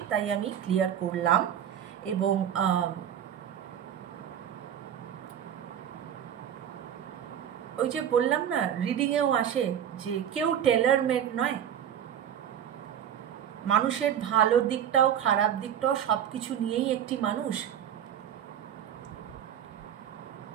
তাই আমি ক্লিয়ার করলাম। এবং ওই যে বললাম না, রিডিংয়েও আসে যে কেউ টেলার মেড নয়। মানুষের ভালো দিকটাও খারাপ দিকটাও সব কিছু নিয়েই একটি মানুষ।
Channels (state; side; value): quieter; left; 9.4 dB